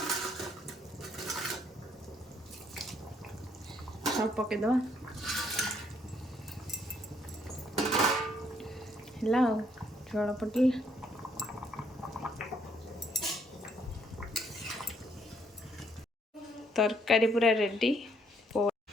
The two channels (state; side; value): normal; both; correlation 0.69